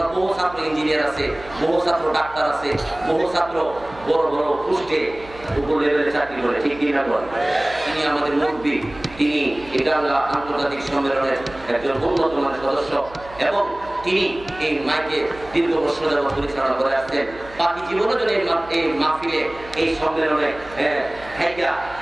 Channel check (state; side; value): noise; right; hum, 19 dB below the sound